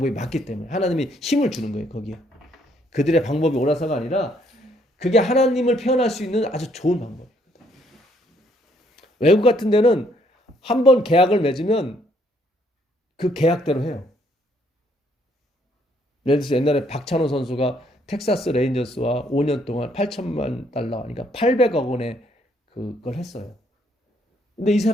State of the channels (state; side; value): normal; both; correlation 0.68